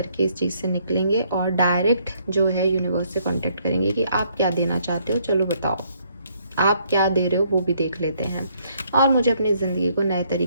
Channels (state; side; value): inverted; both; correlation -0.68